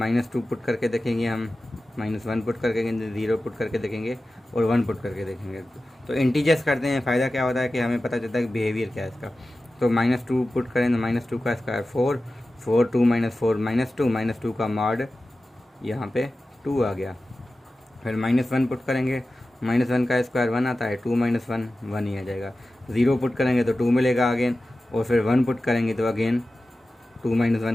पुट करके देखेंगे हम, -1 पुट करके देखेंगे, 0 पुट करके देखेंगे और 1 पुट करके देखेंगे। तो इंटीजर्स करते हैं, फ़ायदा क्या होता है कि हमें पता चलता है कि बिहेवियर क्या है इसका। तो -2 पुट करें तो -2 का स्क्वायर 4, 4 2 -4 -2, -2 का मॉड यहाँ पे 2 आ गया। फिर -1 पुट करेंगे, -1 का स्क्वायर 1 आता है, 2 - 1 1 ही आ जाएगा। 0 पुट करेंगे तो 2 मिलेगा अगेन, और फिर 1 पुट करेंगे तो अगेन 2 -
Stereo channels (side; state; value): both; normal; correlation 0.95